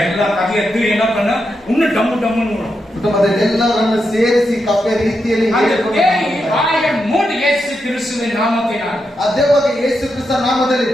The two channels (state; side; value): normal; both; correlation 0.85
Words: எல்லா கதையை எத்து என்ன பண்ண இன்னும் டம்மு டம்முன்னு வரும். ಕುಟುಂಬದಲ್ಲಿ ಎಲ್ಲರನ್ನು ಸೇರಿಸಿ ಕಪ್ಪೆ ರೀತಿಯಲ್ಲಿ ಬಾಯಿಯ ಮೂಡಿ ಯೇಸು ಕ್ರಿಸ್ತುವಿನ ನಾಮத்தினால் ಅದೇವಾಗ ಯೇಸು ಕ್ರಿಸ್ತ ನಾಮದಲ್ಲಿ